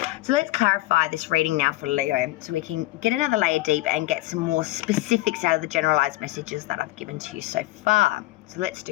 So let's clarify this reading now for Leo so we can get another layer deep and get some more specifics out of the generalized messages that I've given to you so far. So let's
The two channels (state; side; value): quieter; right; 18.1 dB